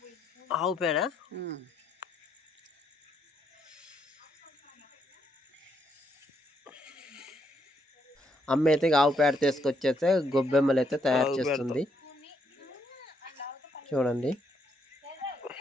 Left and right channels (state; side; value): normal; both; correlation 0.75